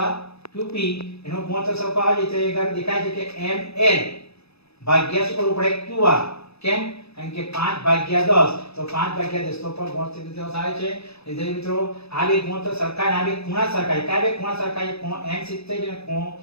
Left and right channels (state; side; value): late; right; 0.79 ms